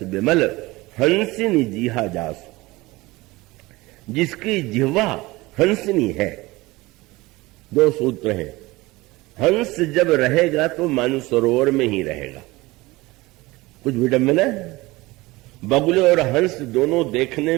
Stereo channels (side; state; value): left; quieter; 20.9 dB